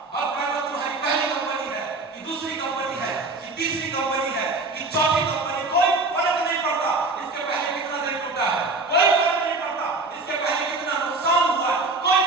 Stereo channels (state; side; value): quieter; left; 3.3 dB